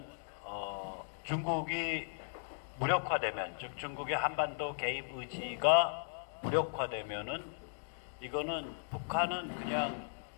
중국이 무력화되면, 즉 중국의 한반도 개입 의지가 무력화되면은 이거는 북한은 그냥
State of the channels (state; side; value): silent; right; digital silence